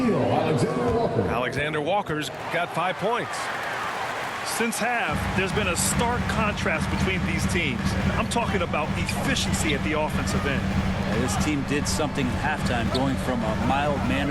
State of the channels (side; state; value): both; identical; correlation 1.00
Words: Alexander Walker's got 5 points. Since half, there's been a stark contrast between these teams. I'm talking about efficiency at the offensive end. This team did something at halftime, going from a